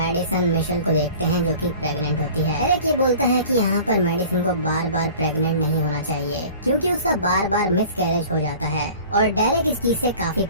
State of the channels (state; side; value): inverted; both; correlation -0.44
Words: मिशेल को देखते हैं जो कि प्रेग्नेंट होती है। एरिक ये बोलता है कि यहाँ पर मेडिसन को बार बार प्रेग्नेंट नहीं होना चाहिए क्योंकि उसका बार बार मिसकैरेज हो जाता है और डेरेक इस चीज से काफी